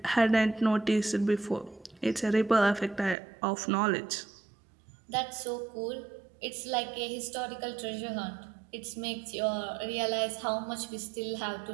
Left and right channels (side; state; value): left; drops out; at 3.2 s